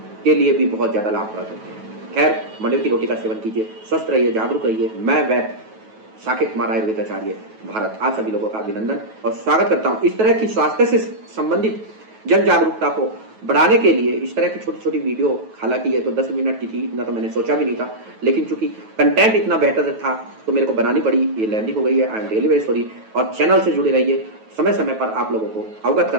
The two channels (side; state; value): left; late; 9.2 ms